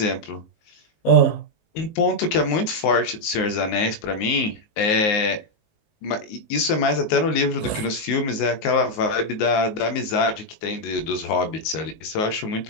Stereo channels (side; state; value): right; late; 19 ms